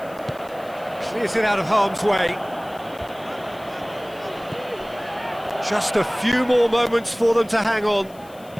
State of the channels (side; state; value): left; noise; hiss, 25 dB below the sound